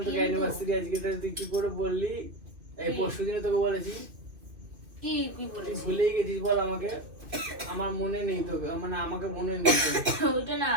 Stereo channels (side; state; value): left; late; 2.6 ms